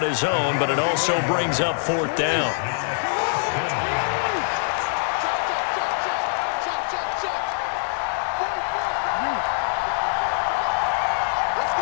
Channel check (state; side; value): silent; right; digital silence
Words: his own, but it also brings up 4th down.